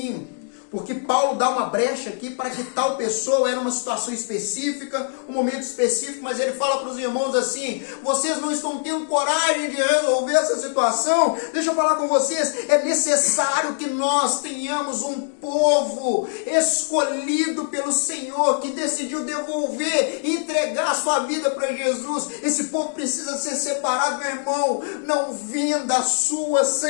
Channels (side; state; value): right; silent; digital silence